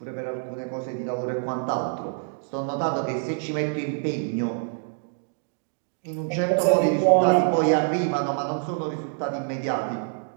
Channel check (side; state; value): left; silent; digital silence